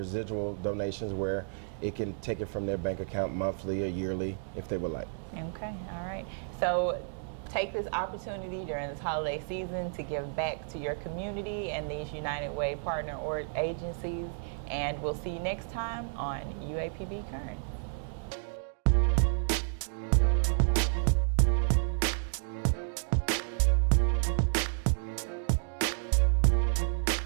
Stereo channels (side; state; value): left; silent; digital silence